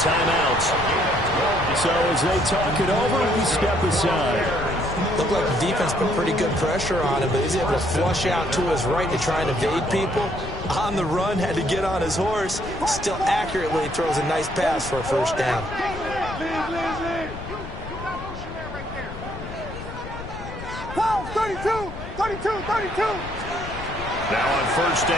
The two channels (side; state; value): left; noise; rumble, 11 dB below the sound